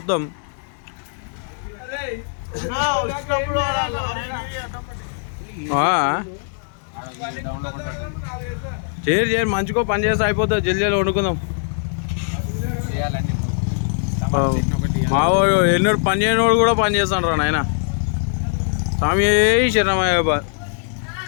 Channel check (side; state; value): right; silent; 65 dB below the other